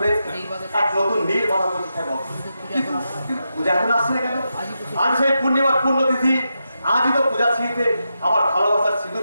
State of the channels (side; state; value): both; inverted; correlation -0.87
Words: এক নতুন নীর বাধা প্রতিষ্ঠা করো। কিন্তু পূজা এখন আসছে না কেন? আজ সেই পূর্ণিমার পূর্ণতিথি, আজই তো পূজা ছিঁড়িতে আমার ভালোবাসার